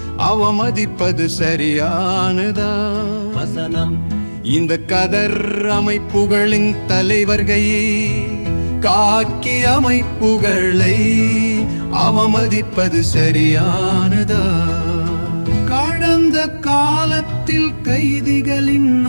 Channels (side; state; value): both; inverted; correlation -1.00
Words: அவமதிப்பது சரியானதா? வசனம். இந்த கதர் அமைப்புகளின் தலைவர்களை காக்கி அமைப்புகளை அவமதிப்பது சரியானதா? கடந்த காலத்தில் கைதிகளின்